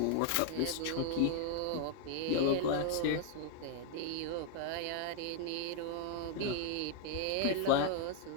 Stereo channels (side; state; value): both; different; correlation 0.00